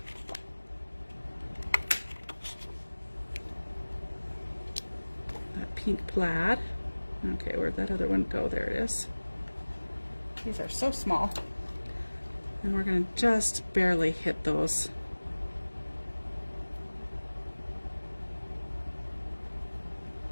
That pink plaid. Okay, where'd that other one go? There it is. These are so small. And we're going to just barely hit those.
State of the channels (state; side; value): inverted; both; correlation -1.00